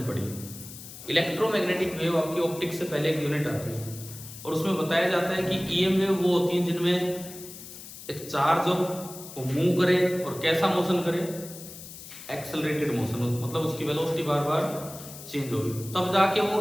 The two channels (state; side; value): noise; left; hiss, 14 dB below the sound